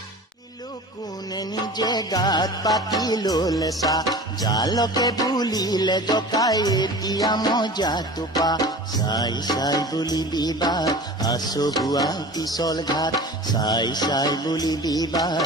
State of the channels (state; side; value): normal; both; correlation 0.38